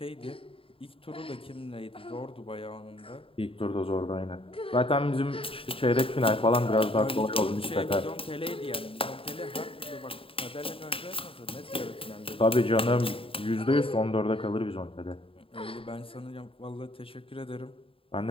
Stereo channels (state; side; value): late; right; 0.27 ms